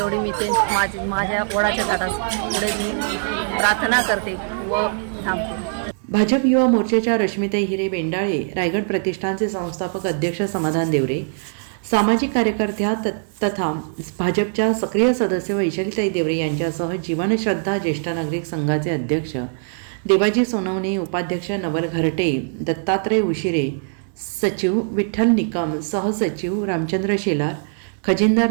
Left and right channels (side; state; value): left; silent; digital silence